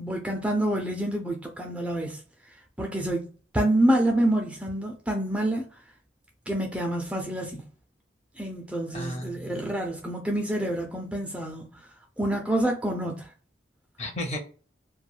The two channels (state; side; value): normal; both; correlation 0.80